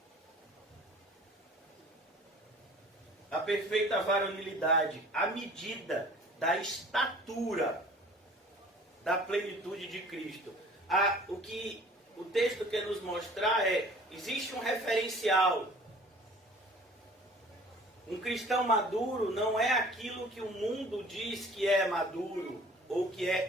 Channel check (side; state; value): both; normal; correlation 0.49